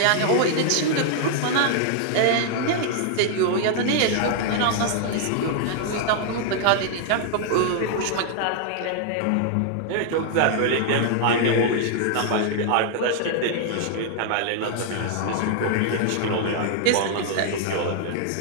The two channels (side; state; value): both; different; correlation 0.00